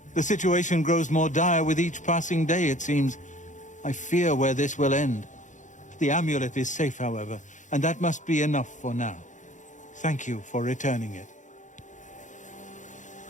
The situation grows more dire with each passing day, it seems. I fear where this will end. The amulet is safe, however, and that must be enough for now. Thank you for returning it.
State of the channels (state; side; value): late; right; 0.36 ms